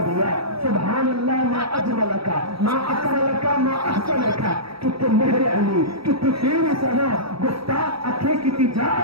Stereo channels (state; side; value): late; left; 0.76 ms